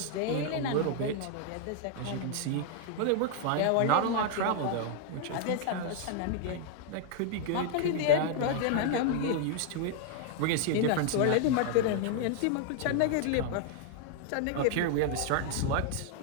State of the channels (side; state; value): both; different; correlation 0.00